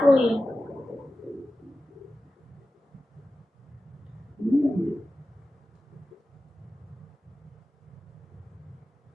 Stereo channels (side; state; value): both; normal; correlation 0.94